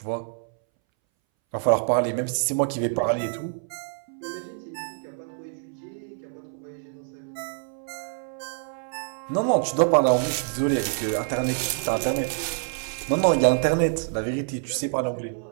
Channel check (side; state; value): left; silent; 61 dB below the other